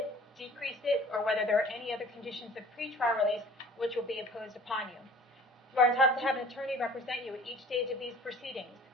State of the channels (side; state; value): both; normal; correlation 0.48